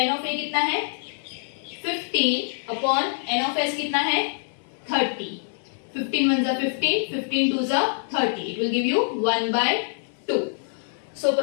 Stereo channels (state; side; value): silent; right; 62 dB below the other